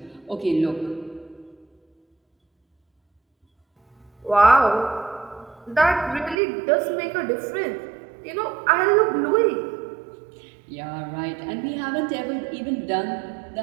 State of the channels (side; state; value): left; drops out; at 6.4 s